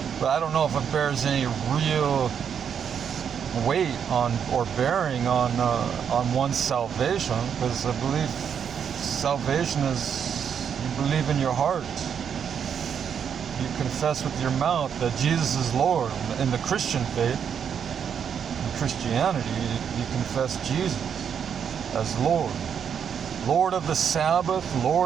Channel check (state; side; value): quieter; left; 7.7 dB